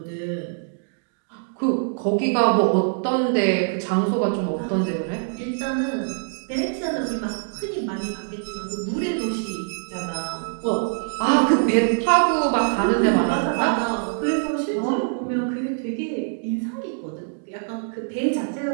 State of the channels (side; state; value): left; silent; digital silence